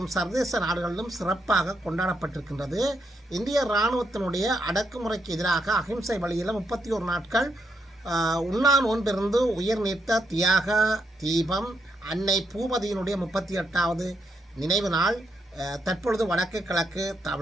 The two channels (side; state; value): both; normal; correlation 0.79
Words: சர்வதேச நாடுகளிலும் சிறப்பாக கொண்டாடப்பட்டிருக்கின்றது. இந்திய இராணுவத்தினுடைய அடக்குமுறைக்கு எதிராக அகிம்சை வழியில் 31 நாட்கள் உண்ணா நோன்பிருந்து உயிர் நீத்த தியாக தீபம் அன்னை பூபதியினுடைய 38வது நினைவு நாள் தற்பொழுது வடக்கு கிழக்கு